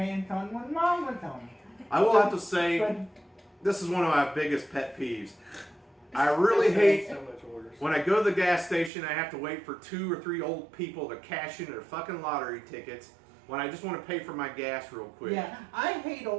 on when Mom was home. I will have to say, But this is one of my biggest pet peeves. I really hate So much orders. when I go to the gas station, I have to wait for 2 or 3 old people to cash in their fucking lottery tickets when I just want to pay for my gas real quick. yeah, I hate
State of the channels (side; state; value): left; drops out; at 8.9 s